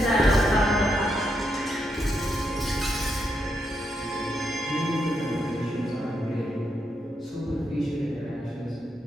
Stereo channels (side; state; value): both; normal; correlation 0.81